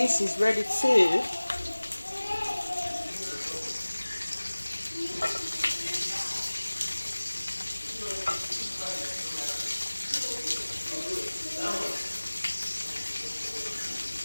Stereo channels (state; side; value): inverted; both; correlation -1.00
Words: is ready too.